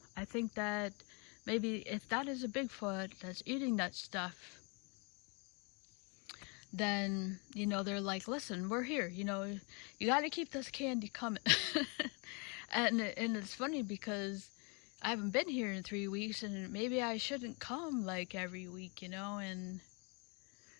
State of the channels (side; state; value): right; quieter; 33.5 dB